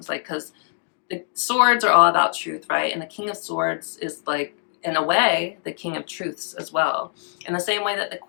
like, because the swords are all about truth, right? And the King of Swords is like, in a way, the King of Truths as well. In the same way that the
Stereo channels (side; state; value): right; silent; digital silence